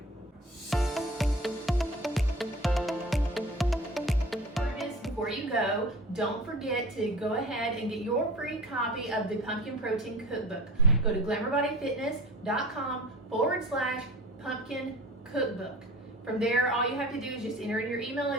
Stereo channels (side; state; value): both; normal; correlation 0.39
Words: Before you go, don't forget to go ahead and get your free copy of the Pumpkin Protein Cookbook. Go to glamourbodyfitness.com/pumpkin cookbook. From there, all you have to do is just enter in your email